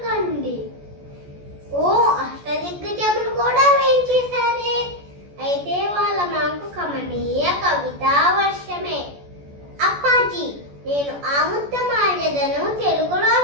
కండి. ఓ అష్టదిగ్గజములు కూడా వేయించేశారే. అయితే వాళ్ళ మాకు కమనీయ కవితా వర్షమే. అప్పాజీ, నేను ఆముక్తమాల్యదను తెలుగులో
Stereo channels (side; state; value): left; late; 14 ms